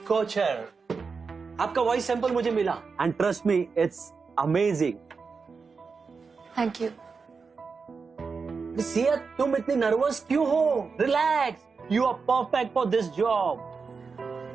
Kochar. आपका वॉइस सैंपल मुझे मिला and trust me it's amazing. Thank you. Sia, तुम इतनी नर्वस क्यों हो? Relax. You are perfect for this job.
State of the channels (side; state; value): left; quieter; 5.0 dB